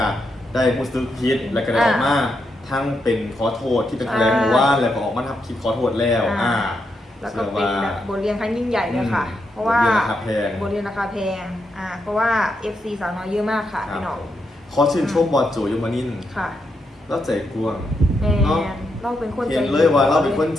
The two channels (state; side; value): normal; both; correlation 0.82